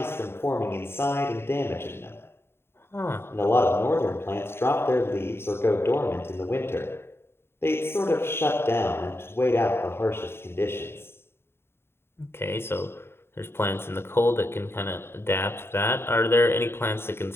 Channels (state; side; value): late; right; 0.11 ms